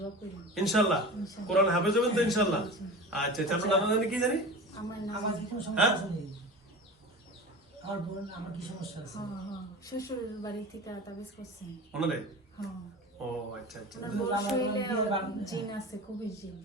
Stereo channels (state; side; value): normal; both; correlation 0.33